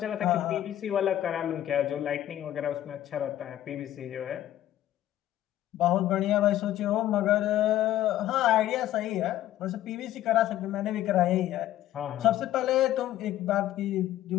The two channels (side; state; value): right; quieter; 13.0 dB